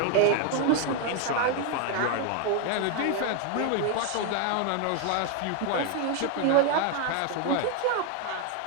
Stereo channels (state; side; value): different; both; correlation 0.01